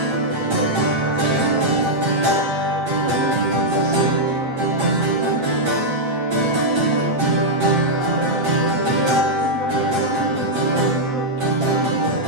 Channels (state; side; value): late; left; 8.2 ms